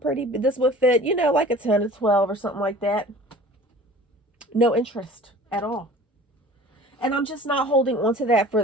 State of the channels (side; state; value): both; normal; correlation 0.45